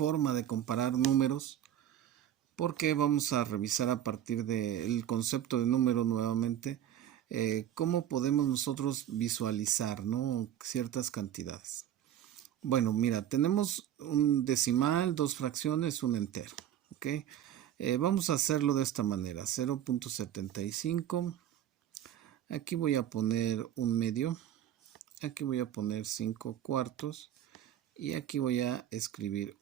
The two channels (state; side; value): quieter; left; 11.0 dB